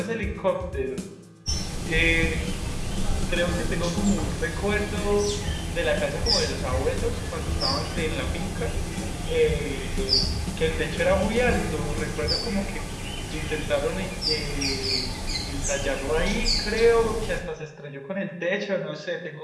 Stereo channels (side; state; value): both; identical; correlation 1.00